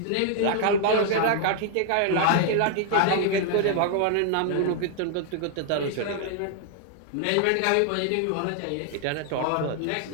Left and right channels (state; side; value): different; both; correlation 0.00